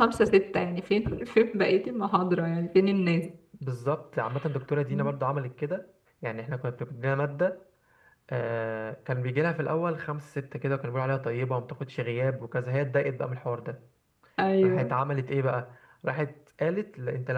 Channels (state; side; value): identical; both; correlation 1.00